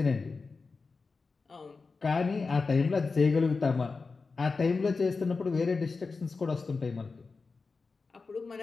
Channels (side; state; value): right; quieter; 4.3 dB